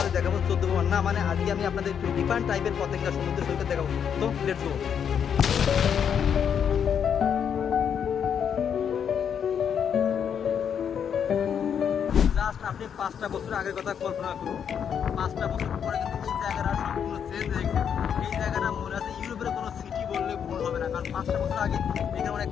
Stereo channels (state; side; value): quieter; right; 7.9 dB